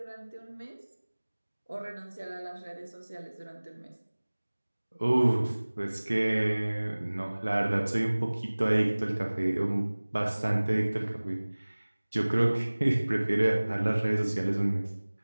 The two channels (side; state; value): both; inverted; correlation -1.00